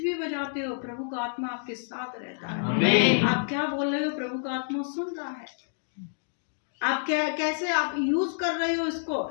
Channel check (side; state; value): right; silent; digital silence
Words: भी बजाते हो, प्रभु का आत्मा आपके साथ रहता है। आमीन। आप क्या बोल रहे हो, प्रभु का आत्मा सुन रहा है। आप क्या कैसे आप यूज कर रहे हो इसको।